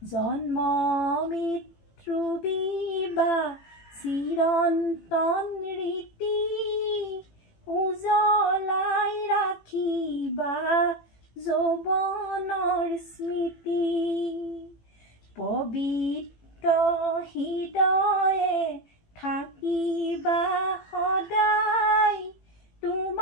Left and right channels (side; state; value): right; late; 18 ms